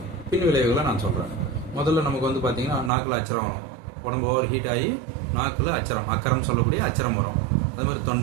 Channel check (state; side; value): drops out; left; at 2.9 s